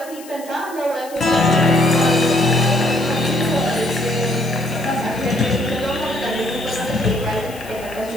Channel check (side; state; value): left; noise; hiss, 19 dB below the sound